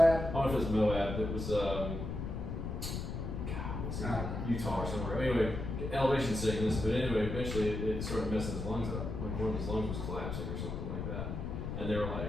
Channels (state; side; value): noise; left; rumble, 4 dB below the sound